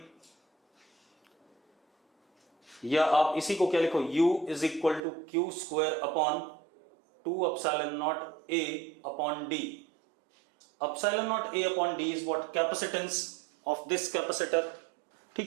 या आप इसी को क्या लिखो, u is equal to Q square upon 2 epsilon not a upon d। Epsilon not a upon d is what? Capacitance of this capacitor.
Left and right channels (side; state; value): left; drops out; at 5.0 s